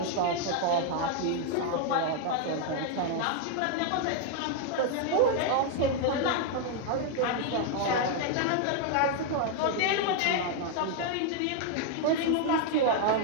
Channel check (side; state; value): both; different; correlation 0.00